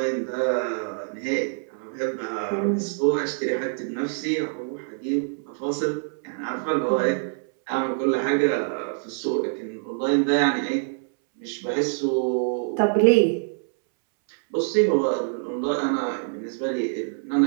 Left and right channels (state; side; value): silent; left; 62 dB below the other